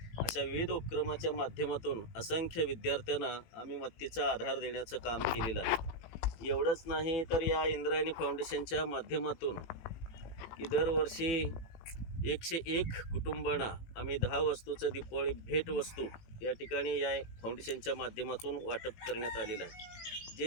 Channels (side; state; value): right; late; 18 ms